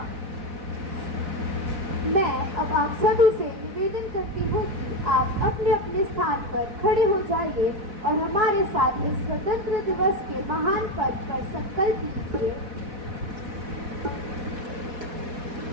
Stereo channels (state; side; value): late; left; 4.1 ms